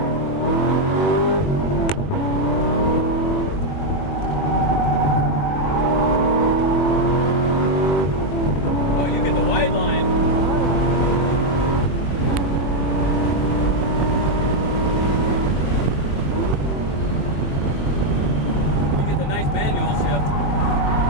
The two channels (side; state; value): right; late; 21 ms